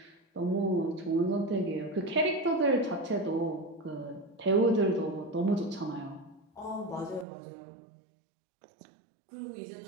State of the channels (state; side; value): drops out; left; at 7.2 s